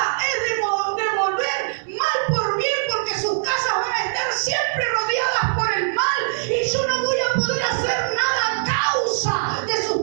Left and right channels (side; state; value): left; silent; 64 dB below the other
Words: es devolver mal por bien, porque sus casas van a estar siempre rodeadas por el mal y yo no voy a poder hacer nada a causa de